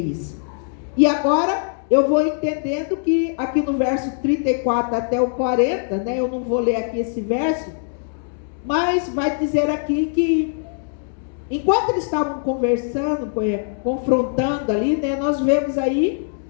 E agora eu vou entendendo que aqui no verso 34 até o 40, né, eu não vou ler aqui esse verso, mas vai dizer aqui que enquanto eles estavam conversando, confrontando ali, né, nós vemos aí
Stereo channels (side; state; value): right; silent; digital silence